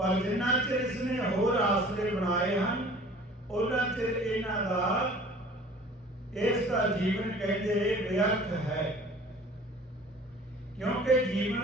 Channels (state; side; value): normal; both; correlation 0.47